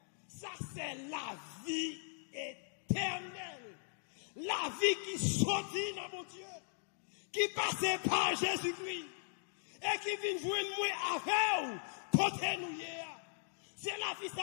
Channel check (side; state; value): right; silent; digital silence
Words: ça, c'est la vie éternelle. La vie qui sortit dans mon Dieu, qui passait par Jésus-Christ, et qui vient joindre moi avec vous. Côté nous hier, c'est la vie